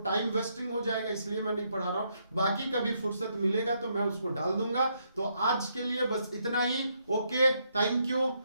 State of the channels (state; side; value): inverted; both; correlation -0.75